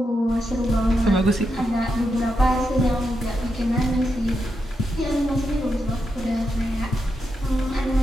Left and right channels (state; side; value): normal; both; correlation 0.85